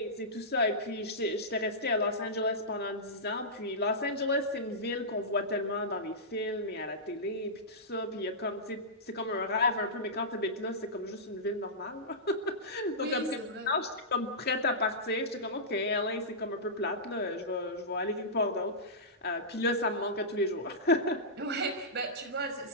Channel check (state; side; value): normal; both; correlation -0.15